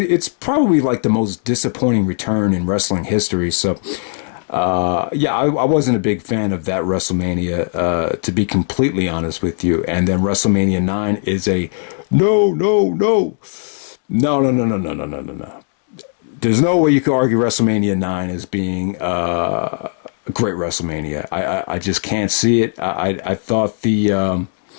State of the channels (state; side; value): silent; right; 67 dB below the other